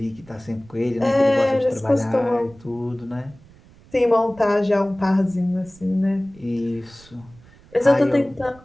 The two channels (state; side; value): noise; right; rumble, 25 dB below the sound